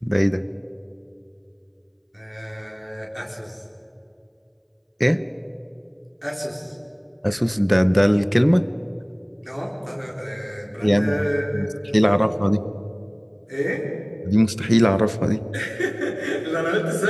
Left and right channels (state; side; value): identical; both; correlation 1.00